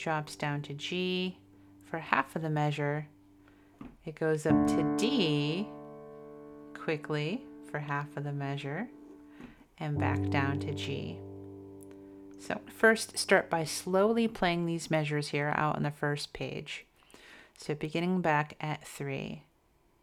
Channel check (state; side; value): identical; both; correlation 1.00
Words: down to G for half of the measure. It goes up to D quickly for half of the measure and back down to G. So first start by slowly playing these measures here out on the first page. So beginning back at 3.